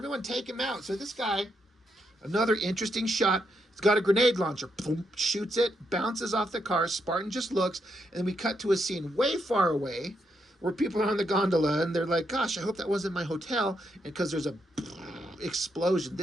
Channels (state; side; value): normal; both; correlation 0.80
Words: take him out. So this guy, another interesting shot. He's got a grenade launcher. Boom, shoots it, bounces off the car. Spartan just looks. And then we cut to a scene way far away where people are on the gondola and they're like, gosh, I hope that wasn't my hotel, and because there's a explosion.